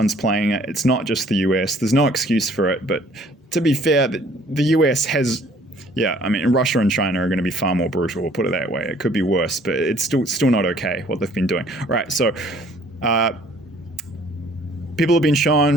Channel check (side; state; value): both; normal; correlation 0.58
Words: playing it. It's not just the US. There's no excuse for it. But to be fair, the US has, Russia and China are going to be far more brutal. We'll put it that way. It could be worse, but it's still not okay what they've been doing. All right, so people have been shown,